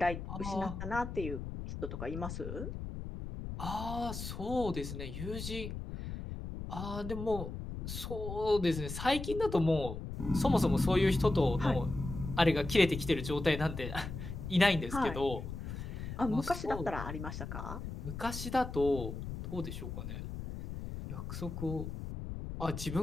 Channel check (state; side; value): noise; left; rumble, 7 dB below the sound